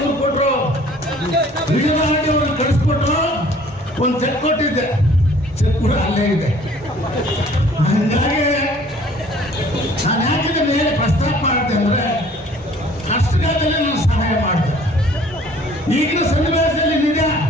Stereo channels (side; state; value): both; normal; correlation 0.54